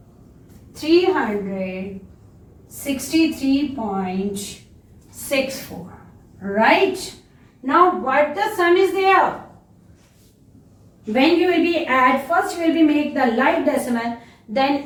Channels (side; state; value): both; identical; correlation 1.00